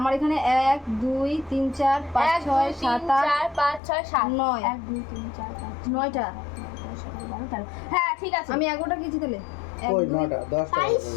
এখানে 1 2 3 4 5 6 7 8 5 6 7 9 1 2 3 4 5 9টা। হ্যাঁ ঠিক আছে আমি 11টা খেয়েছি তাহলে। ওই 9টা 10টা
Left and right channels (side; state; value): right; drops out; at 3.8 s